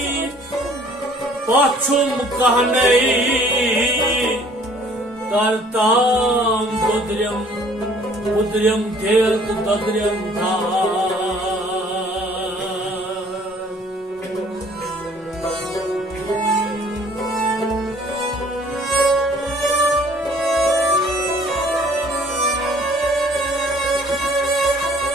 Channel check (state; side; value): normal; both; correlation 0.56